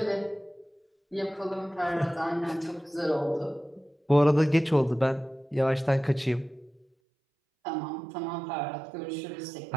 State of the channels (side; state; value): left; drops out; at 6.9 s